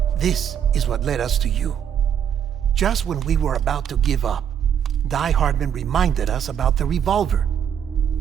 this is what led us to you. Just when we were about to give up, Die Hardman reminded us about the revolver.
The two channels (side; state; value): left; quieter; 8.7 dB